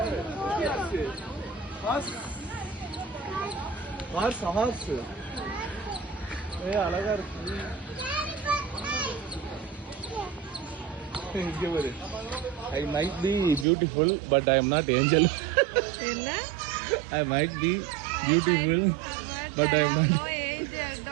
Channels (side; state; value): left; drops out; at 13.7 s